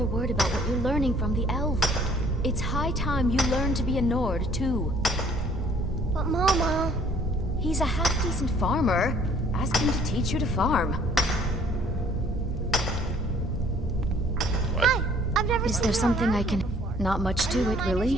word about what you're learning from the elf. It's high time you learn to be a Nord, too. But Mama... He's a half-decent farmer. Ask him to teach you to farm. Hi! I've never Is seen there you something around I can... here before. Not much Are you to a it, miner really.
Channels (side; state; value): both; normal; correlation 0.58